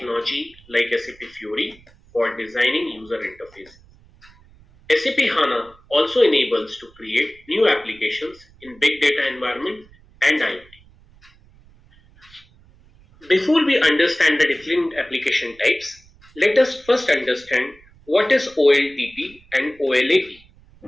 like SAP Fiori for designing user interfaces. SAP HANA also enables to create new applications in big data environment and IoT. Before we understand the different application types, let us first understand what is OLTP and OLAP.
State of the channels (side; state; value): right; noise; rumble, 27 dB below the sound